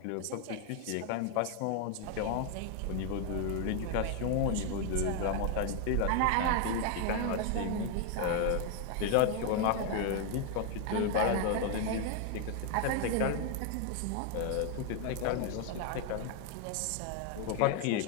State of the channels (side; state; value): both; different; correlation 0.01